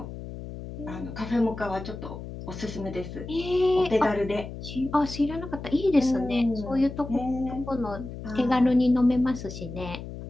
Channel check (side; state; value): left; noise; hum, 10 dB below the sound